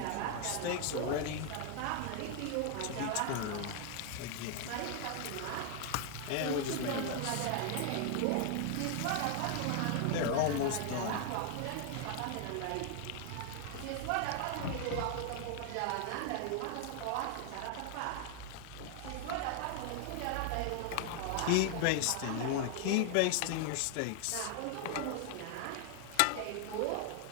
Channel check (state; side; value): different; both; correlation 0.00